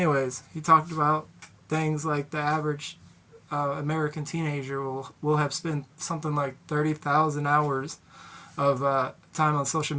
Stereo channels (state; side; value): identical; both; correlation 1.00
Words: he talked about things like the average American teenager will have spent something like 30,000 hours of time on social